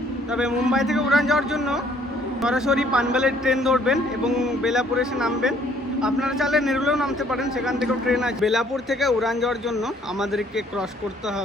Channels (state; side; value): normal; both; correlation 0.62